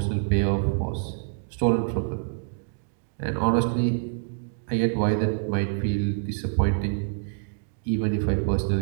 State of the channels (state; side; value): silent; left; digital silence